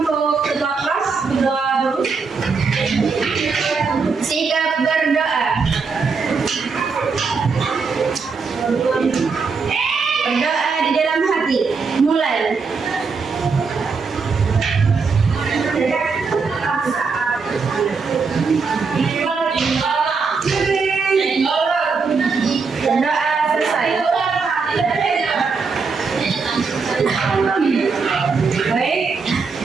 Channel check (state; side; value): quieter; left; 4.9 dB